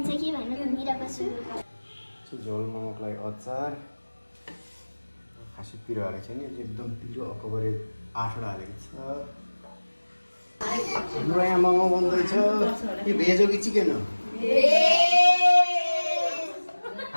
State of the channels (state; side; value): inverted; both; correlation -1.00